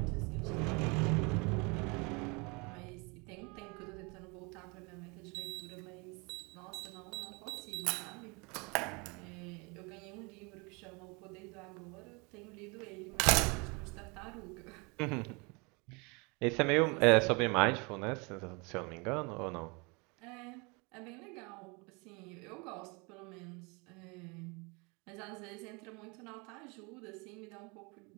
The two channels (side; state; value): left; quieter; 29.3 dB